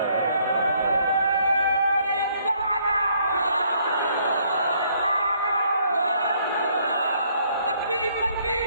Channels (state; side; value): inverted; both; correlation -0.67